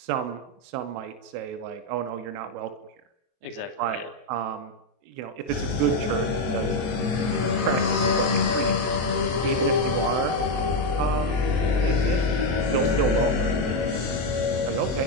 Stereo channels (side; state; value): left; late; 24 ms